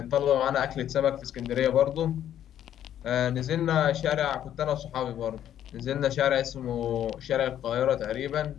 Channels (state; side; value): quieter; right; 10.8 dB